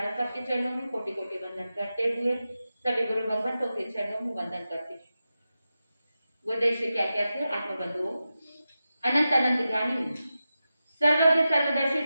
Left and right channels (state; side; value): inverted; both; correlation -0.92